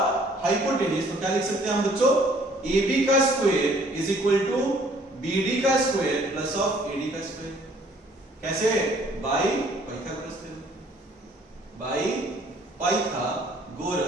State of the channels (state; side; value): normal; both; correlation 0.59